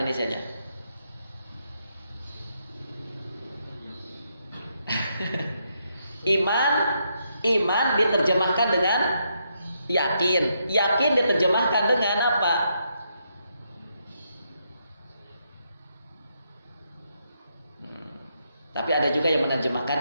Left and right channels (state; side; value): inverted; both; correlation -0.79